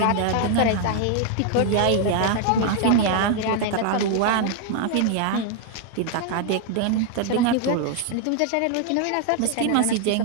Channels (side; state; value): both; different; correlation 0.00